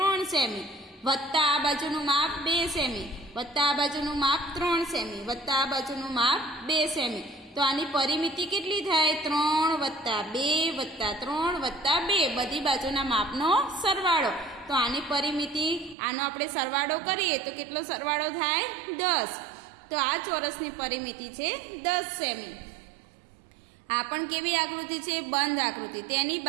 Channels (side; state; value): left; drops out; at 16.0 s